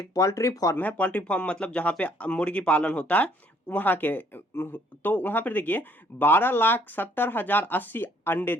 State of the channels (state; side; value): normal; both; correlation 0.63